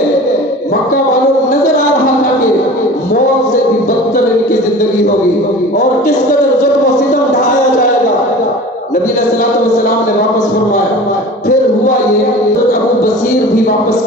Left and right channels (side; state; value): both; normal; correlation 0.39